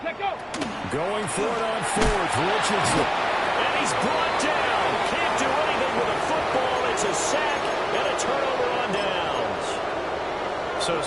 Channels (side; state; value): both; identical; correlation 1.00